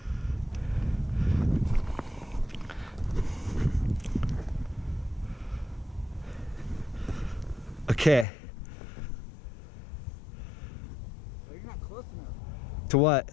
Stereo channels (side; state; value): right; drops out; at 8.2 s